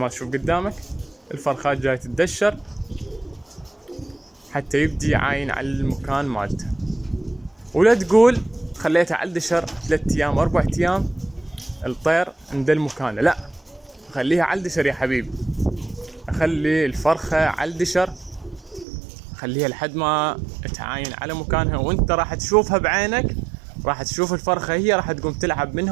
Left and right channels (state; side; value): drops out; left; at 18.9 s